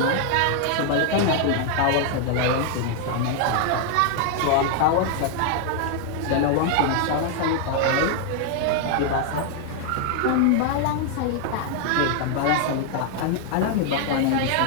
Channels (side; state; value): both; different; correlation 0.00